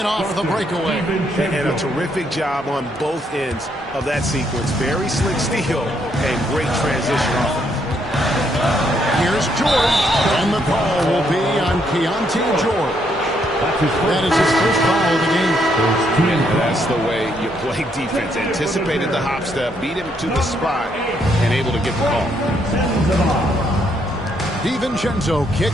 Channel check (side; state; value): both; normal; correlation 0.73